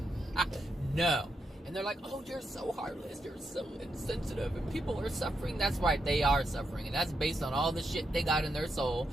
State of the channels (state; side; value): normal; both; correlation 0.83